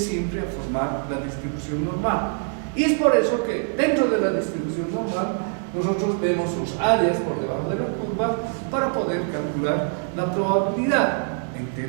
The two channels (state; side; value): silent; left; 55 dB below the other